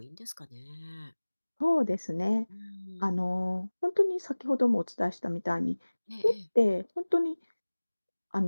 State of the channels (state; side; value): inverted; both; correlation -1.00